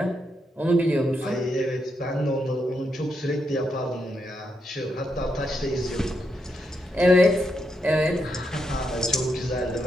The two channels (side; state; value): both; normal; correlation 0.81